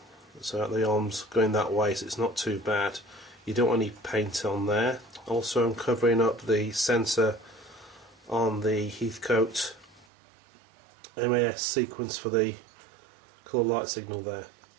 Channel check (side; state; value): left; drops out; at 10.1 s